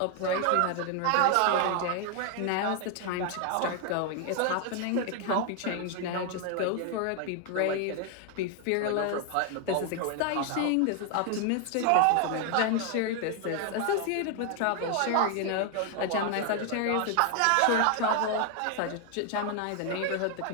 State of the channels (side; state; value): both; different; correlation 0.01